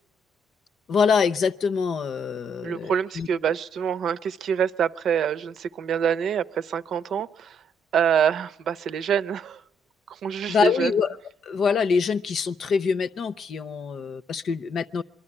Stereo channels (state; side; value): normal; both; correlation 0.71